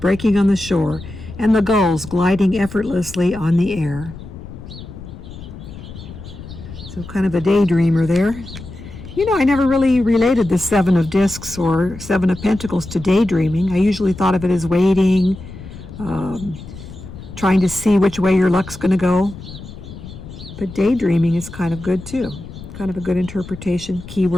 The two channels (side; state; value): left; noise; rumble, 14 dB below the sound